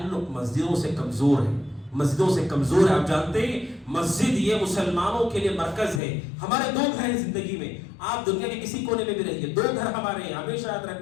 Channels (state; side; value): drops out; right; at 6.0 s